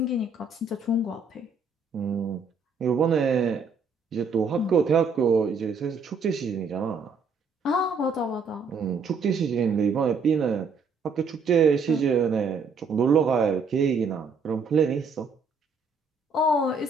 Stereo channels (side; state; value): left; quieter; 4.4 dB